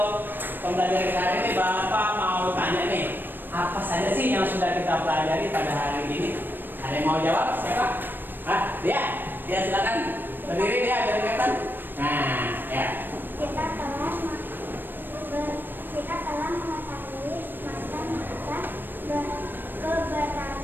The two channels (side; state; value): left; late; 0.094 ms